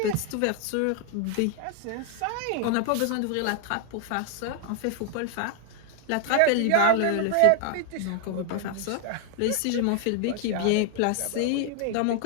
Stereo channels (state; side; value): different; both; correlation 0.00